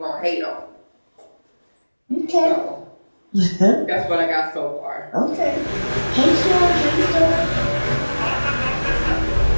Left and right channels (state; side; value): inverted; both; correlation -1.00